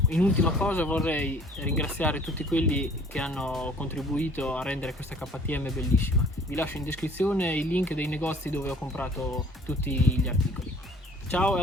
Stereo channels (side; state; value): both; normal; correlation 0.53